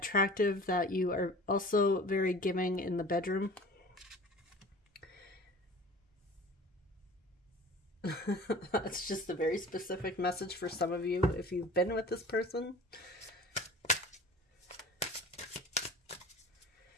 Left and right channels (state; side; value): normal; both; correlation 0.42